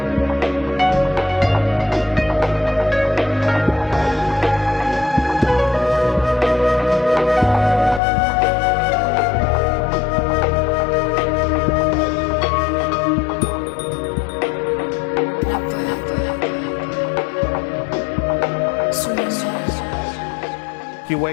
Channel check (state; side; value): drops out; right; at 8.0 s